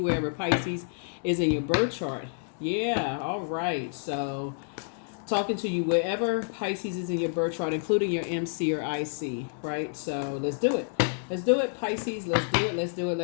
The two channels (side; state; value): right; silent; digital silence